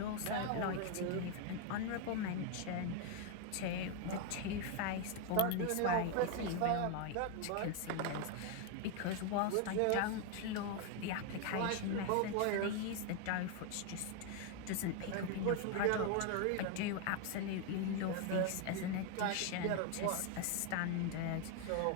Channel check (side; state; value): both; different; correlation 0.01